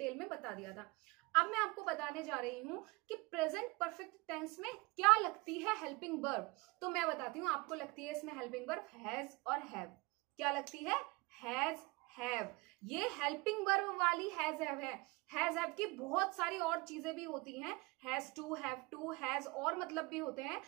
में बता दिया था। अब मैं आपको बताने जा रही हूं कि प्रेजेंट परफेक्ट टेंस में क्या लगती है हेल्पिंग वर्ब। तो मैं बताती हूँ, आपको लगती है इसमें हेल्पिंग वर्ब हैज और हैव। क्या लगती है? Has, have. ये हेल्पिंग वर्ब वाली हैज हैव है। हैज हैव की बहुत सारी और चीजें भी होती हैं, has to, have to, has और मतलब भी होते हैं।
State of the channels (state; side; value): quieter; left; 25.2 dB